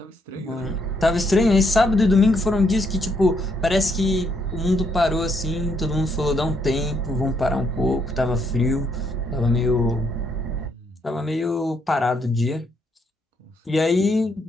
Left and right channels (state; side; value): normal; both; correlation 0.74